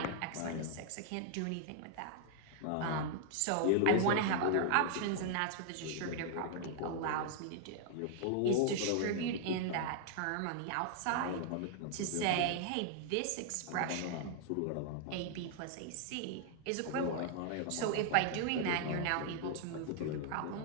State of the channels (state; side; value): different; both; correlation 0.00